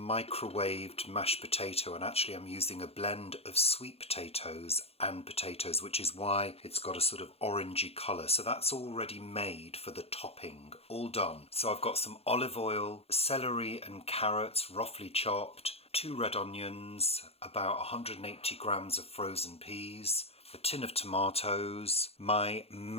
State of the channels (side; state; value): right; late; 0.29 ms